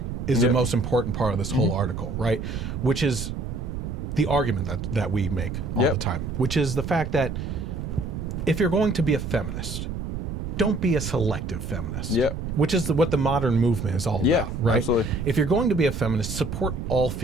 is the most important part of this whole article, right? Which is the argument that we make all Yep. the time, which is the fact that if you're going to be a feminist, don't be a selective feminist. Yep. Which is what the modern movement is all Yeah, about, right? absolutely. If you're going to be a feminist, support all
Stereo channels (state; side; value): noise; right; rumble, 5 dB below the sound